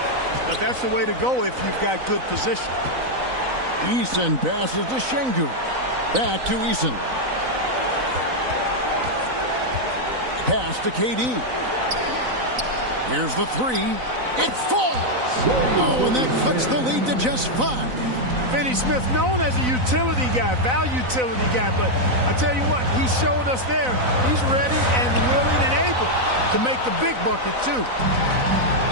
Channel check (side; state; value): left; late; 4.0 ms